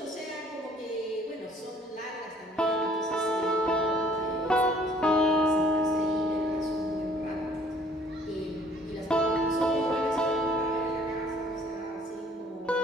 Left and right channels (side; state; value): both; normal; correlation 0.58